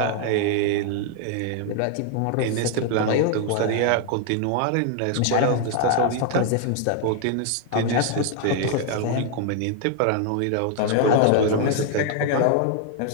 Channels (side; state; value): both; different; correlation 0.00